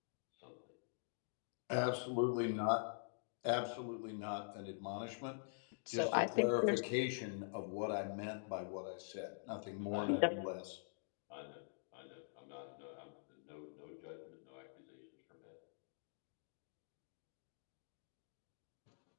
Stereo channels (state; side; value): silent; right; digital silence